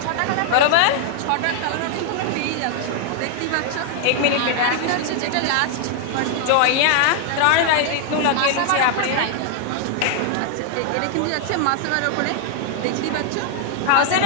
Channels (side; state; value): both; different; correlation 0.00